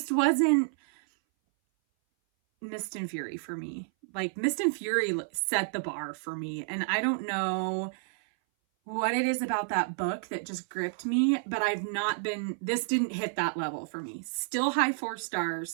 wasn't Mist and Fury for me. Like, Mist and Fury set the bar for me, and I don't know what it is about that book that just gripped me, but this didn't hit that level for me. Still high 4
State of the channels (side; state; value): left; silent; 58 dB below the other